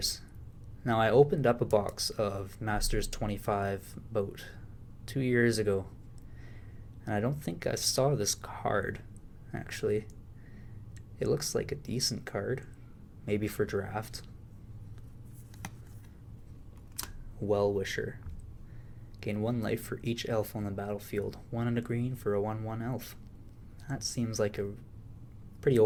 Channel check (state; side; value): identical; both; correlation 1.00